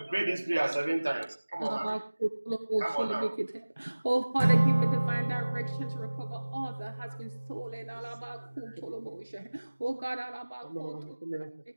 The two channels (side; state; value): both; inverted; correlation -1.00